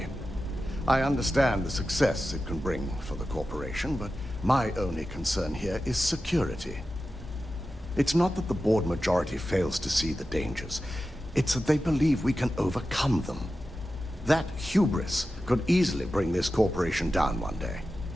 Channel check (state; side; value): normal; both; correlation 0.93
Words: I understand the success it can bring for the corporation, but my only concern here is security. It's not that the board majority fails to see the dangers. It's that they believe we can overcome them. That hubris could easily bring this corporation down one day.